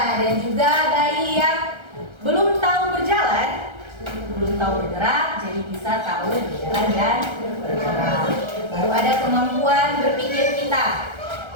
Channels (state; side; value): late; left; 1.3 ms